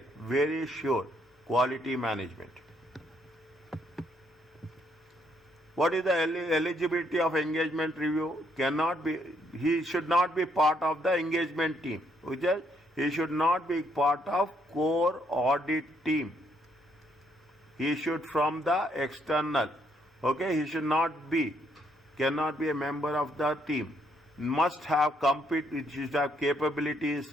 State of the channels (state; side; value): normal; both; correlation 0.71